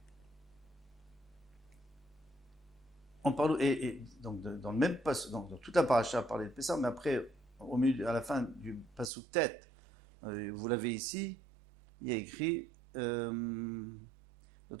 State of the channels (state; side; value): drops out; left; at 9.1 s